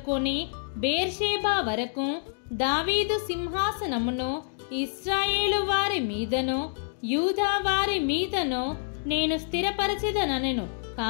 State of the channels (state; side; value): silent; right; digital silence